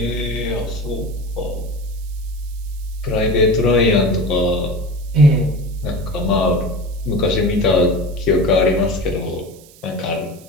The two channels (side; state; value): right; noise; hiss, 24 dB below the sound